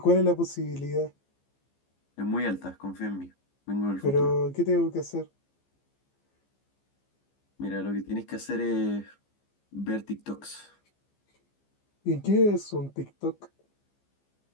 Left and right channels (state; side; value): late; right; 15 ms